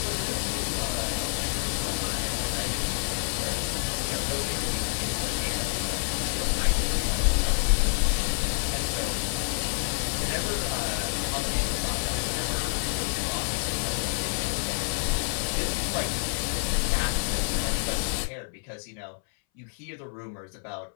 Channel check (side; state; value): right; silent; 59 dB below the other